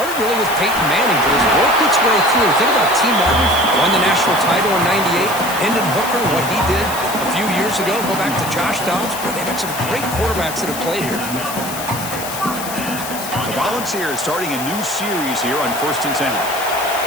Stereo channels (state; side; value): noise; left; hiss, 9 dB below the sound